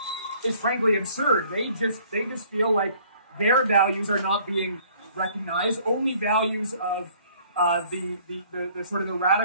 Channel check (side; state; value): both; inverted; correlation -0.58